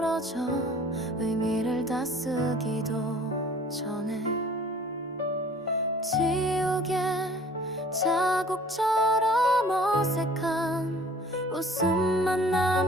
의미를 다 쓰기도 전에 지우개 자국처럼 어색한 웃음만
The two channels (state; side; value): normal; both; correlation 0.50